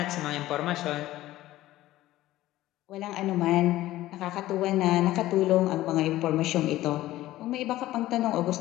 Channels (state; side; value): quieter; right; 15.6 dB